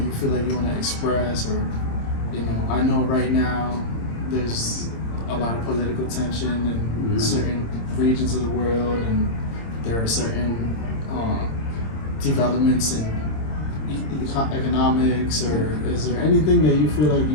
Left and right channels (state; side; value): late; right; 26 ms